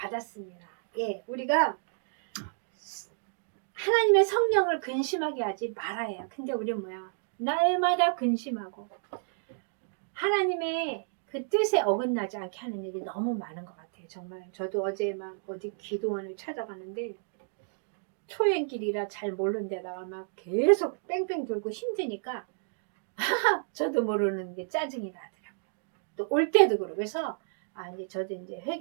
예, 우리가 하나님의 성령을 근심하게 하지 말아야. 근데 우리 뭐야? 날마다 근심하고 하나님의 그 뜻에 어긋나지 않게 하는 일이 너무 많은 것 같아요. 정말 저도 어제 막 어디 기도원을 찾아가는데 초행길이라 잘 모르는 데다가 막 계속 뺑뺑 돌고 힘드니까 저도 모르는 게 짜증이 나더라고요. 또 올 때도 그러고. 그래서 이제 저도 이제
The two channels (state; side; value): silent; left; digital silence